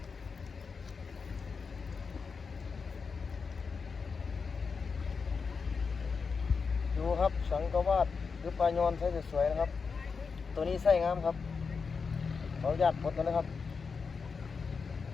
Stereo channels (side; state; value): right; quieter; 5.2 dB